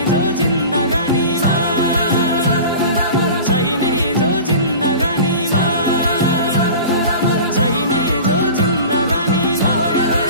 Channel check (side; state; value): both; inverted; correlation -0.36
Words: जो जिन्दगानीमा चाहिने जो जिन्दगानीमा चाहिने जो जिन्दगानीमा होए